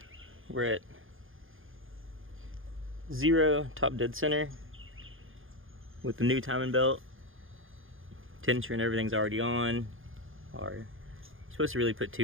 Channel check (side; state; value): left; late; 0.59 ms